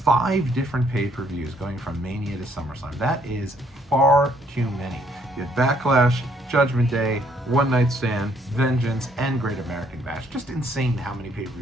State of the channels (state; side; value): normal; both; correlation 0.67